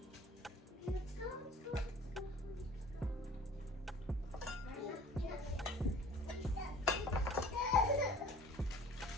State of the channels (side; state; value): both; normal; correlation 0.48